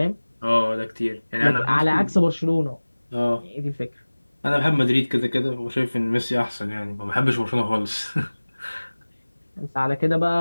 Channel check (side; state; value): both; inverted; correlation -1.00